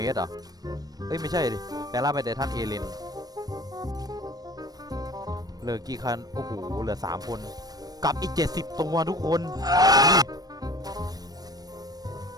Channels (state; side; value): late; left; 0.19 ms